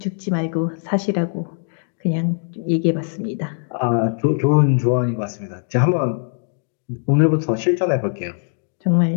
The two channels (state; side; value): silent; right; 65 dB below the other